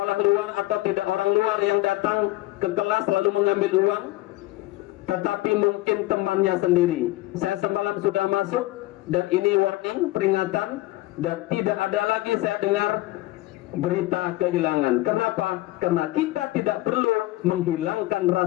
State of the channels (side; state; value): right; quieter; 18.2 dB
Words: luar atau tidak orang luar yang datang ke kelas lalu mengambil uang, tetapi mungkin temannya sendiri. Saya semalam sudah masuk, dan ini warning, peringatan, dan tidak ada lagi saya dengar berita kehilangan. Kenapa? Karena kita tidak perlu menghilangkan